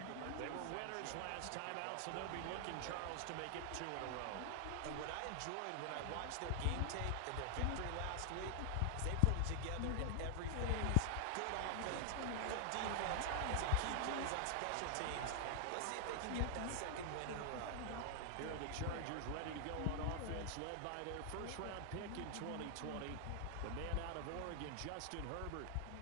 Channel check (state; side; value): different; both; correlation 0.00